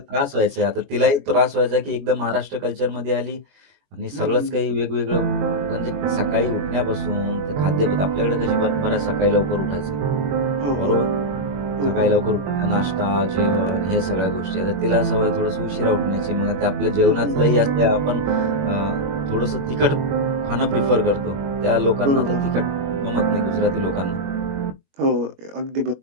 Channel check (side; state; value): left; late; 21 ms